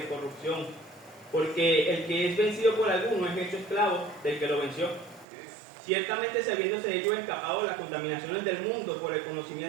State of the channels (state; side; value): drops out; left; at 5.2 s